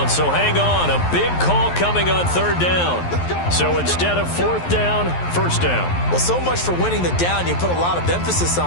so hang on. A big call coming on 3rd down. So instead of 4th down, 1st down. Well, so much for winning the down you put a lot of emphasis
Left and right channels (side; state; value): right; late; 11 ms